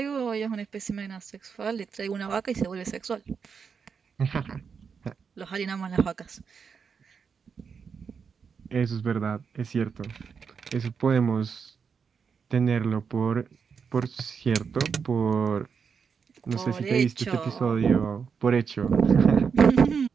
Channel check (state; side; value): quieter; left; 6.1 dB